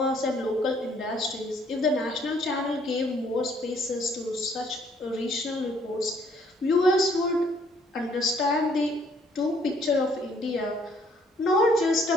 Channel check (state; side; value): normal; both; correlation 0.64